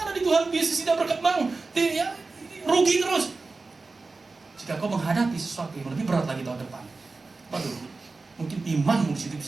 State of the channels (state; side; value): quieter; left; 3.8 dB